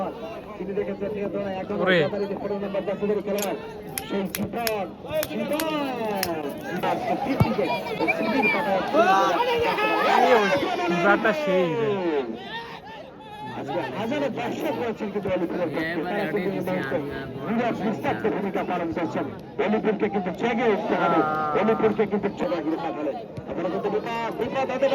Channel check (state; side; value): identical; both; correlation 1.00